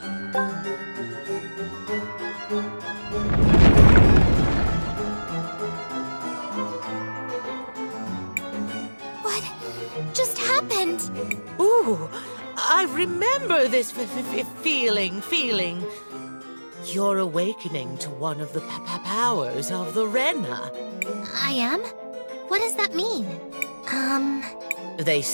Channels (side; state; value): both; inverted; correlation -1.00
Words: What just happened? Ooh, I remember this feeling. You're awakening to one of the powers of the Renna. I am? What does that mean? They